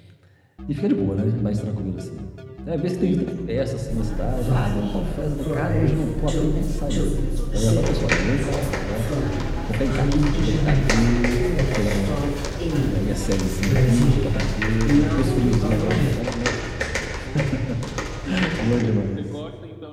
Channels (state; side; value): identical; both; correlation 1.00